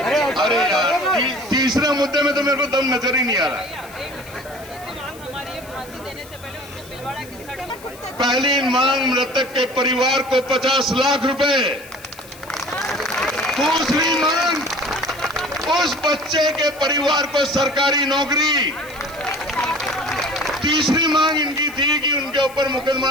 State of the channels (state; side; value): noise; left; hiss, 20 dB below the sound